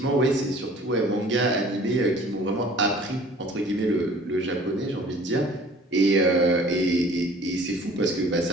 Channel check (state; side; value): normal; both; correlation 0.50